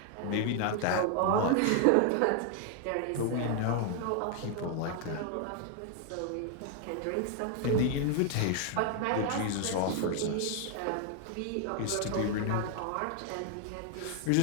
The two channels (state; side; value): different; both; correlation 0.00